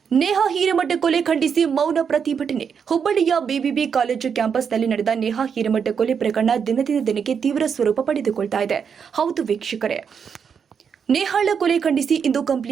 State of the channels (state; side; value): quieter; left; 6.8 dB